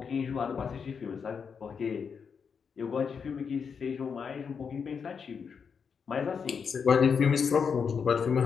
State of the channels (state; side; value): quieter; right; 6.3 dB